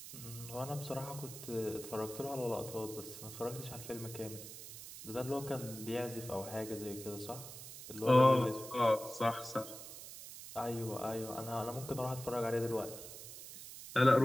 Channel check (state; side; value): noise; right; hiss, 12 dB below the sound